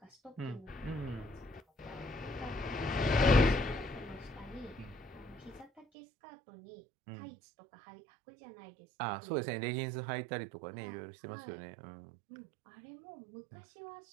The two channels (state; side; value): drops out; left; at 5.9 s